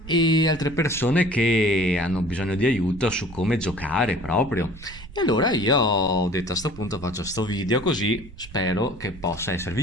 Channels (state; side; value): noise; right; rumble, 16 dB below the sound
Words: e altre persone che hanno bisogno di aiuto su come giocare proprio. E allora io ho detto a sto punto faccio sto video così spero che possa